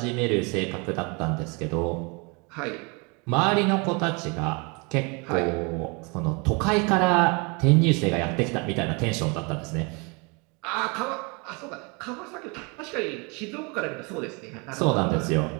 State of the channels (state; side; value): quieter; left; 30.6 dB